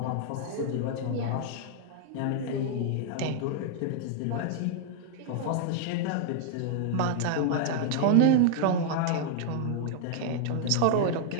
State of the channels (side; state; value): both; different; correlation -0.01